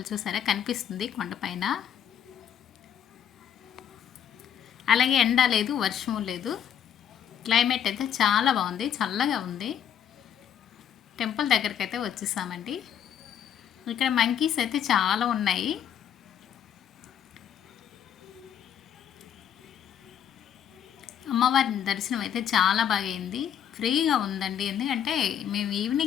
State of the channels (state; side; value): quieter; right; 9.2 dB